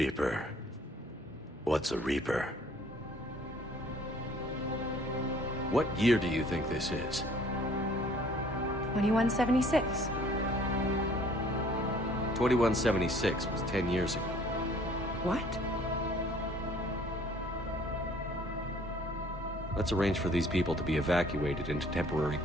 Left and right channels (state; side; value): normal; both; correlation 0.56